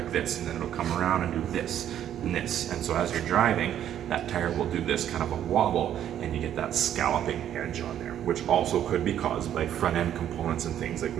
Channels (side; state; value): left; quieter; 10.6 dB